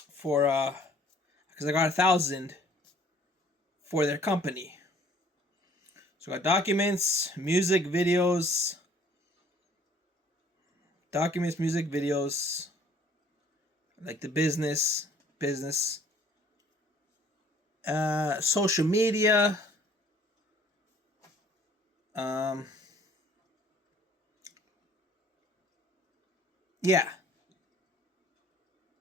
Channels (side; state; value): both; normal; correlation 0.56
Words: for because I got 1,000 for their company. So I got documents, music, videos, music, videos, like the business, social media, yeah.